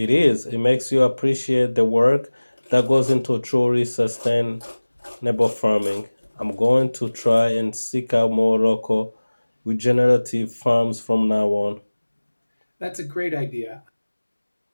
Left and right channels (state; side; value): inverted; both; correlation -1.00